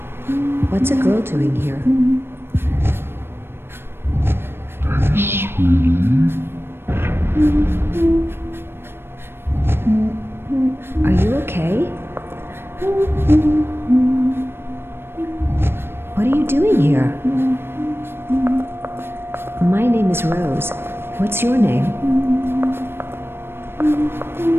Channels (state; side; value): late; left; 0.11 ms